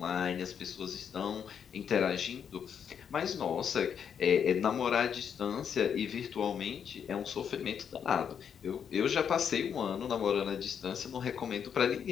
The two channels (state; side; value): quieter; right; 7.7 dB